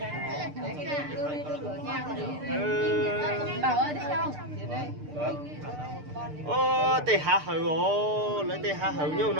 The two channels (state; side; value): late; left; 6.7 ms